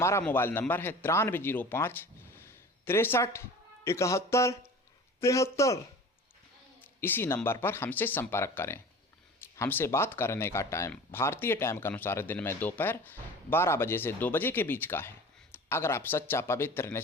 मोबाइल नंबर है 9305 63 71 73। इसी नंबर पर हमसे संपर्क करें। हमसे बात करने का टाइम भारतीय टाइम के अनुसार दिन में दोपहर 12 बजे से 2 बजे के बीच का है। अगर आप सच्चा पवित्र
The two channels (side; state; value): both; normal; correlation 0.39